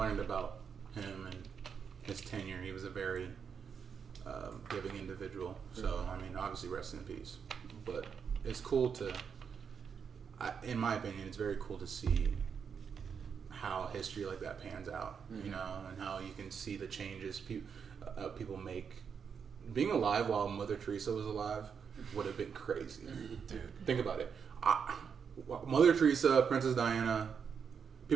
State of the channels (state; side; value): quieter; left; 6.7 dB